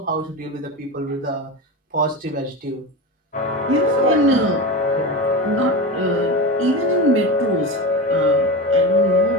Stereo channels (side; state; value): both; normal; correlation 0.23